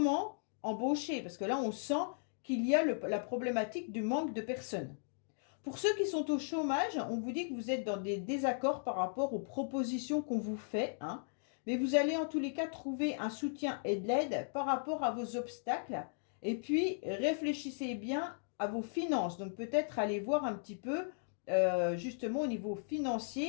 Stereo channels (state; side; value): silent; right; digital silence